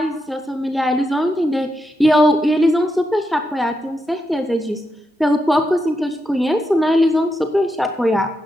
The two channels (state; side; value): normal; both; correlation 0.84